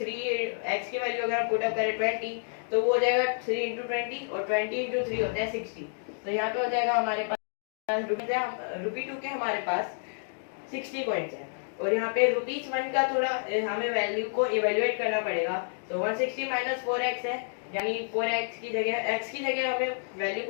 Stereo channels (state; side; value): silent; right; digital silence